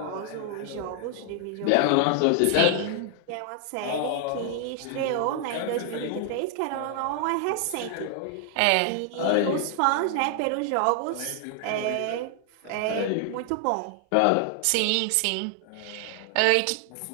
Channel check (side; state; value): both; different; correlation 0.00